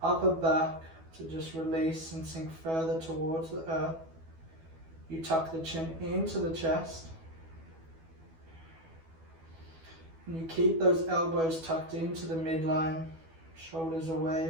upper back to just release and sink further towards the earth. You tuck the chin into the chest. And you keep those elbows tucked into the midline, shoulders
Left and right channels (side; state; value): left; late; 12 ms